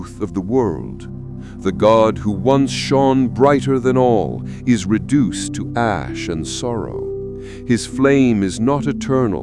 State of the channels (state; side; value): identical; both; correlation 1.00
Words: of the world. The god who once shone brighter than all is reduced to ash and sorrow. His flame is not